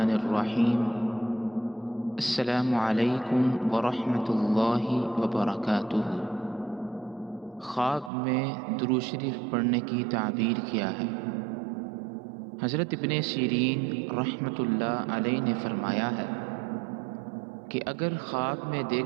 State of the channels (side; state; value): left; drops out; at 8.1 s